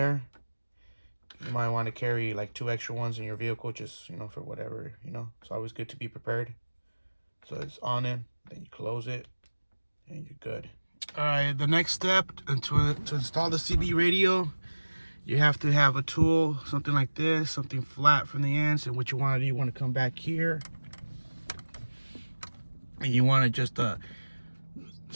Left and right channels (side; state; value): both; inverted; correlation -1.00